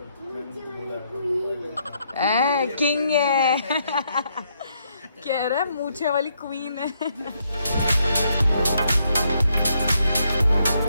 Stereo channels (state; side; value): inverted; both; correlation -0.75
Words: किंग है। कह रहा है मूछे वाली क्वीन है।